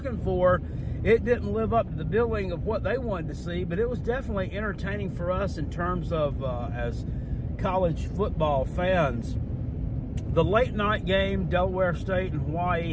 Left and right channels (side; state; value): both; identical; correlation 1.00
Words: for, it didn't live up to the billing of what they wanted to see, but it was definitely entertaining for us in terms of as college football fans. The late night game, Delaware State and